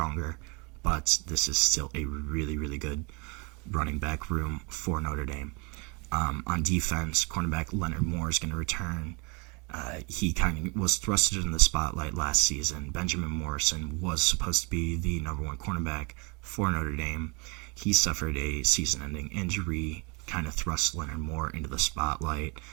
but this is still a really, really good running back room for Notre Dame. On defense, cornerback Leonard Moore is going to return. He kind of was thrusted in the spotlight last season. Benjamin Morrison was supposed to be the number 1 cornerback for Notre Dame. He suffered a season-ending injury, kind of thrust Leonard Moore into the spotlight,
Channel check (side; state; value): left; quieter; 31.0 dB